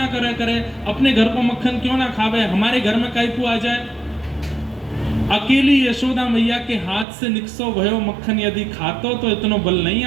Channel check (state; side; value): drops out; left; at 7.1 s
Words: करे, अपने घर को मक्खन क्यों ना खावे, हमारे घर में काई को आ जाए। अकेली यशोदा मैया के हाथ से निकसो भयो मक्खन यदि खातो तो इतनो बल नहीं